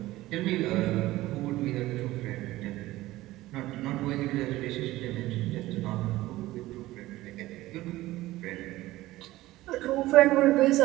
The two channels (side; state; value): left; quieter; 17.2 dB